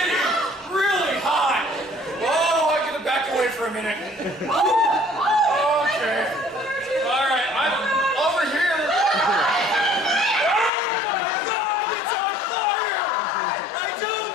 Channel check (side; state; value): right; drops out; at 10.7 s